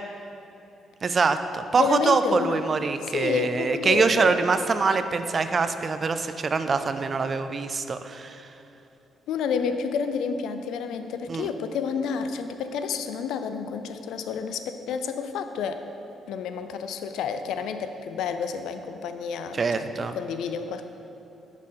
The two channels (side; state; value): both; normal; correlation 0.74